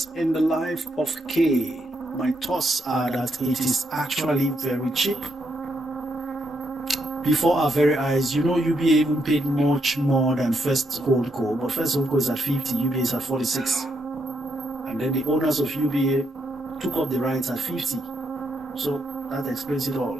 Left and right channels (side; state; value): both; normal; correlation 0.78